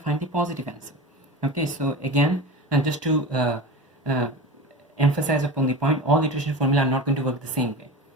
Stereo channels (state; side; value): normal; both; correlation 0.31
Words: find the positive answer. Okay, so again, and just to emphasize upon the point, all iteration formula are not going to work the same way.